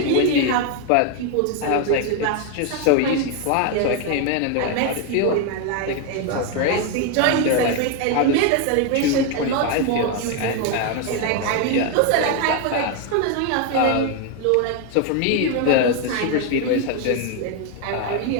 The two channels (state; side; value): different; both; correlation 0.01